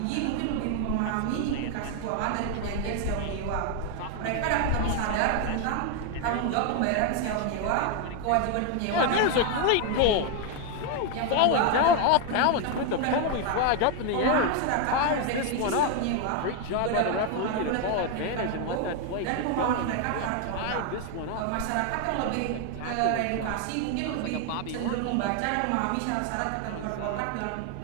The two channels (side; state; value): both; different; correlation 0.01